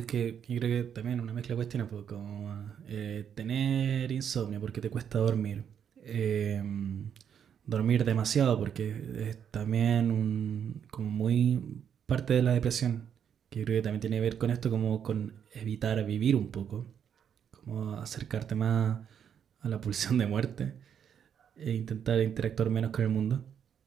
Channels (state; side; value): quieter; left; 8.3 dB